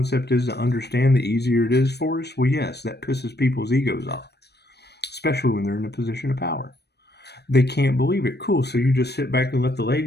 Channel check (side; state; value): right; late; 0.48 ms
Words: is to understand, the easier it is for us. Well, yes, that pisses people's egos off, especially when they're in a position of power. They can't believe it. Cool, so you just sit back and let the